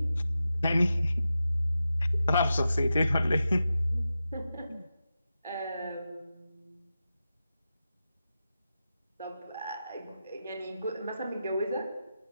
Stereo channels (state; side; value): inverted; both; correlation -0.90